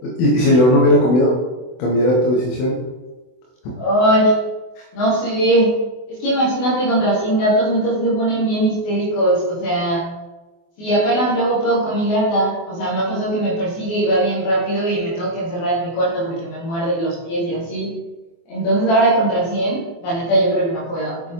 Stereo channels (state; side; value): late; right; 24 ms